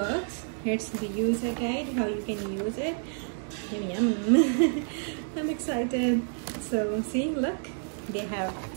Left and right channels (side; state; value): left; silent; 57 dB below the other